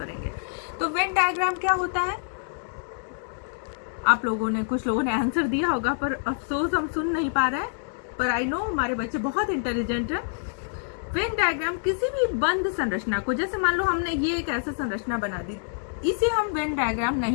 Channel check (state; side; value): silent; right; digital silence